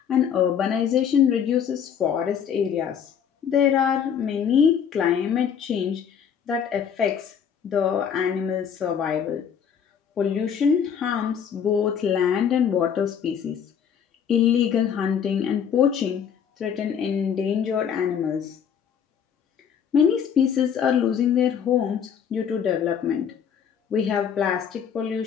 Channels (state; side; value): quieter; right; 7.8 dB